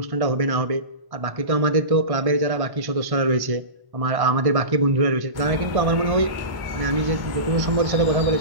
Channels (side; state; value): left; late; 1.1 ms